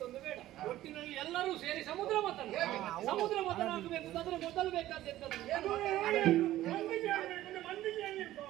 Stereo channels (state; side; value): quieter; left; 14.5 dB